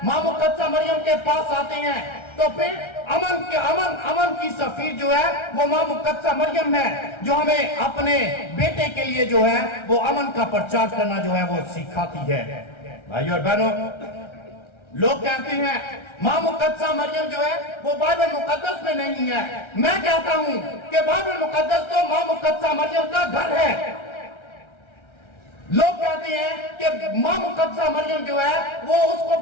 ماں مقدسہ مریم کے پاس آتے ہیں تو پھر امن کی سفیر جو ہے وہ ماں مقدسہ مریم ہے، جو ہمیں اپنے بیٹے کے لیے جو ہے وہ امن کا پرچار کرنا جو ہے وہ سکھاتی ہے۔ بھائی اور بہنوں، لوگ کہتے ہیں ماں مقدسہ مریم جو ہے وہ بائبل مقدس میں نہیں ہے۔ میں کہتا ہوں کہ بائبل مقدس تو ماں مقدسہ مریم کا گھر ہے۔ لوگ کہتے ہیں کہ ماں مقدسہ مریم جو ہے وہ اس کو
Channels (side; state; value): right; late; 1.3 ms